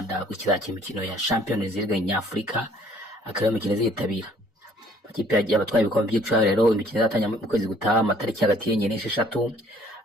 gukizakira imikino ya Champions League nyafurika, akaba imikino zitabira ikipe y'abatwaye ibikombe by'icaro. Rero imikino izatanya mu kwezi gutaha amatariki hagati y'enye n'esheshatu.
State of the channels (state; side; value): normal; both; correlation 0.58